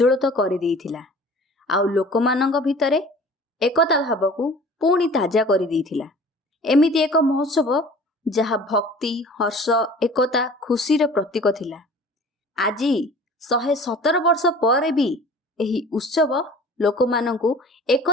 करि देइथिला आउ लोकमानंग भितरे एकता भाव को पुणी ताजा करि देइथिला। एमिति एक महोत्सव जहा भक्ति हर्ष एकता खुशीर प्रतीक थिला। आजी 117 वर्ष पर भी एही उत्सव लोकमानंकु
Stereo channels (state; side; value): normal; both; correlation 0.45